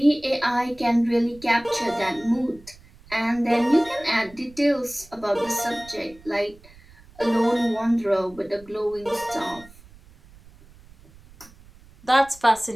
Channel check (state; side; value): noise; right; rumble, 24 dB below the sound